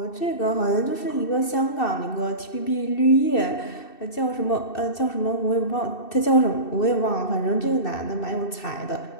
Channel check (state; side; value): late; right; 2.6 ms